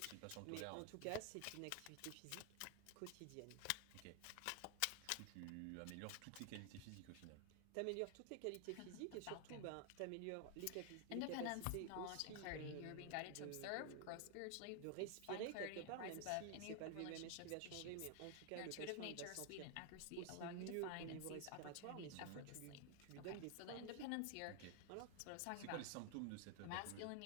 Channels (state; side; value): different; both; correlation 0.00